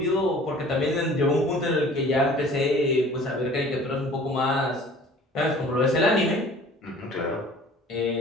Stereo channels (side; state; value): both; normal; correlation 0.48